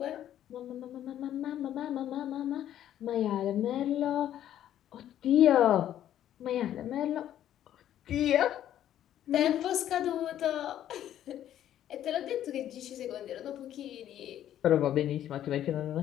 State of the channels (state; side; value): quieter; right; 11.4 dB